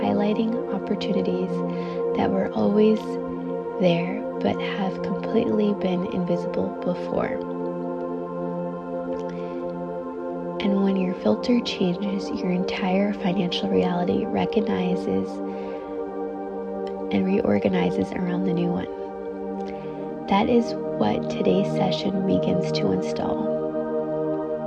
opportunities that were always there but have completely been invisible before. And when your filter changes, your entire financial reality recognizes and reorganizes around the new one. That is what today's session begins to install.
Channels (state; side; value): identical; both; correlation 1.00